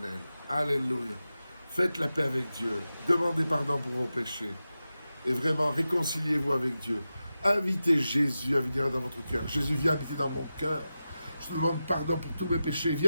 Alléluia. Faites la paix avec Dieu, demandez pardon pour vos péchés, et vraiment réconciliez-vous avec Dieu. Invitez Jésus à venir dans votre cœur. Jésus, viens habiter dans mon cœur. Je te demande pardon pour tous mes péchés.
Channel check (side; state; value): both; inverted; correlation -0.92